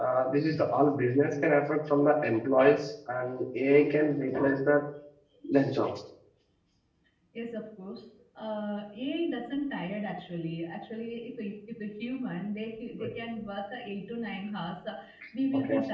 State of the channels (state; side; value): identical; both; correlation 1.00